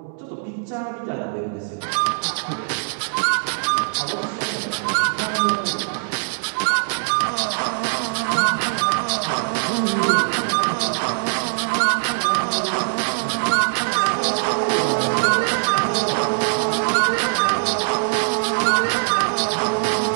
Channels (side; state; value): left; silent; digital silence